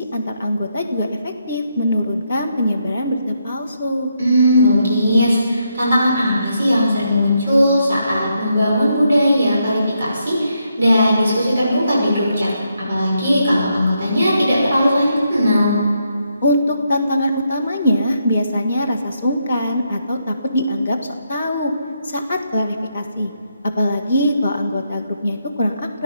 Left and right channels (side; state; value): both; inverted; correlation -0.79